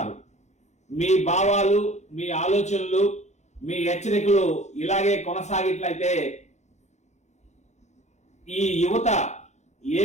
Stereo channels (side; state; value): right; late; 0.33 ms